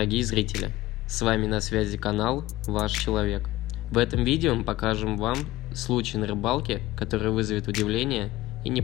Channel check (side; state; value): right; quieter; 17.1 dB